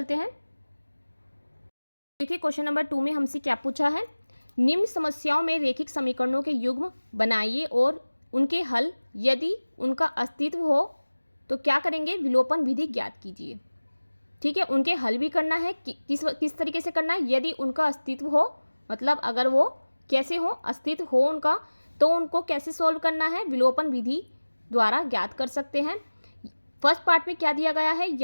हैं। देखिए क्वेश्चन नंबर 2 में हमसे क्या पूछा है, निम्न समस्याओं में रेखिक समीकरणों के युग्म बनाइए और उनके हल यदि उनका अस्तित्व हो तो क्या करेंगे, विलोपन विधि ज्ञात कीजिए। ठीक है, उनके हल भी करना है, किस तरीके से करना है, यदि उनका अस्तित्व हो, मतलब अगर वो कैसे हो, अस्तित्व हो उनका, तो उनको कैसे सॉल्व करना है, विलोपन विधि द्वारा ज्ञात कर सकते हैं। फर्स्ट पार्ट में क्या दिया गया है,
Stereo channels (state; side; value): inverted; both; correlation -1.00